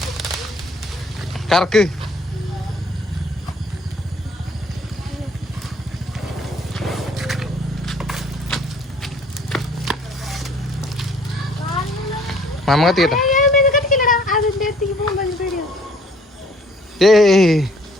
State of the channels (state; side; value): normal; both; correlation 0.58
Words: കറക്ക്. മാമ കത്തിക്കട്ടെ.